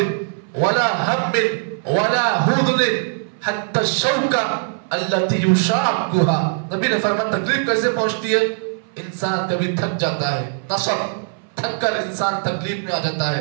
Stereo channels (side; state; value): left; silent; 62 dB below the other